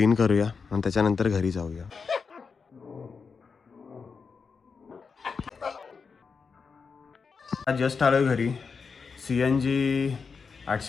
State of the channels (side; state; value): right; quieter; 5.3 dB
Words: करूया आणि त्याच्यानंतर घरी जाऊया. जस्ट आलो घरी. CNG